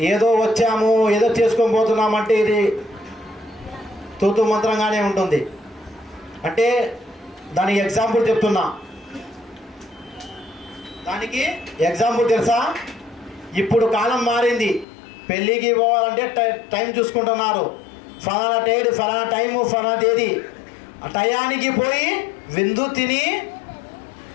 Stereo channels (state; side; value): drops out; right; at 14.9 s